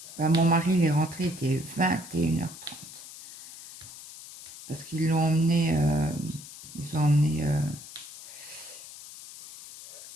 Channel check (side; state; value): left; noise; hiss, 15 dB below the sound